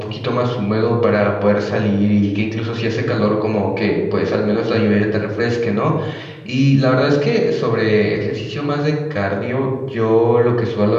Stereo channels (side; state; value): both; identical; correlation 1.00